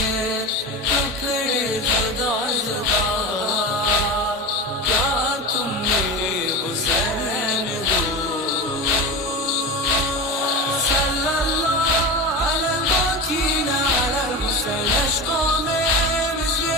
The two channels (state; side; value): normal; both; correlation 0.25